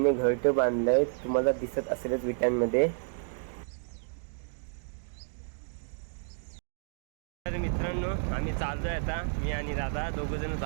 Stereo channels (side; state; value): left; silent; digital silence